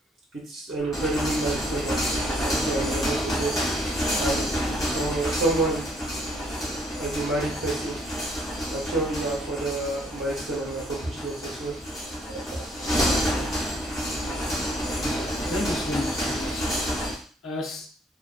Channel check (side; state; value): both; normal; correlation 0.65